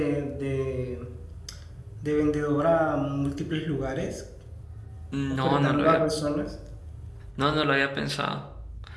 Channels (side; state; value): both; identical; correlation 1.00